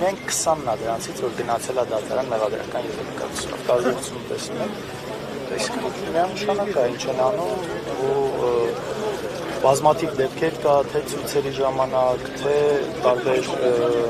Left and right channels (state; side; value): identical; both; correlation 1.00